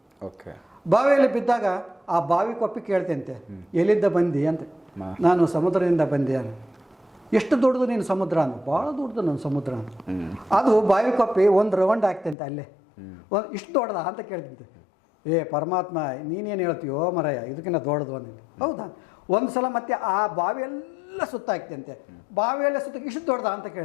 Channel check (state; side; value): drops out; right; at 12.4 s